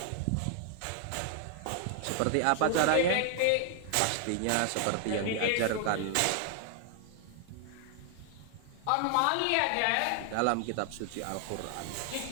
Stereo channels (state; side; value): different; both; correlation 0.00